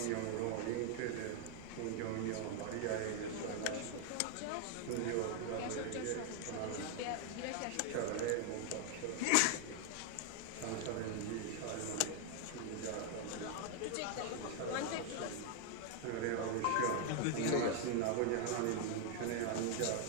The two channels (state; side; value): different; both; correlation 0.00